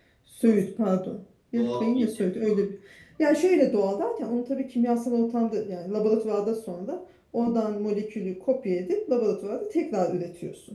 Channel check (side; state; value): both; identical; correlation 1.00